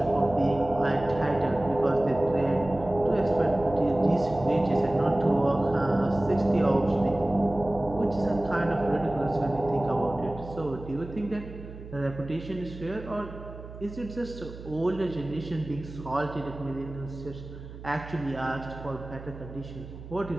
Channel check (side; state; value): right; noise; hum, 14 dB below the sound